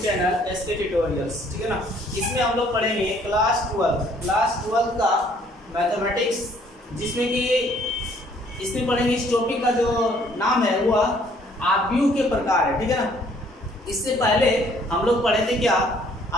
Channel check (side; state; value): both; normal; correlation 0.61